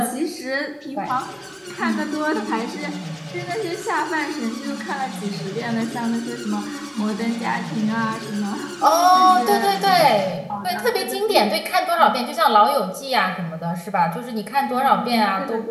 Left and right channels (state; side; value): identical; both; correlation 1.00